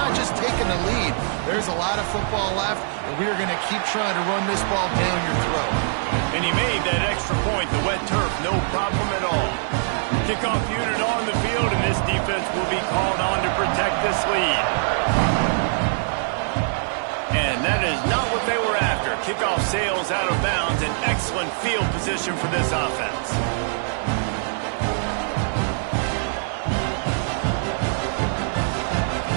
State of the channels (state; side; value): silent; left; 63 dB below the other